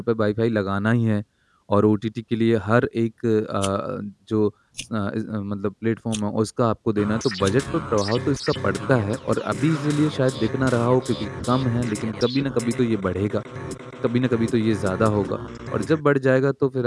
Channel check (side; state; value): both; identical; correlation 1.00